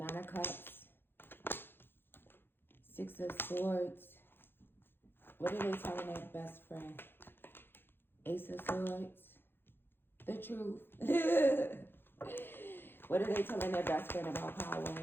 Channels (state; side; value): late; right; 0.10 ms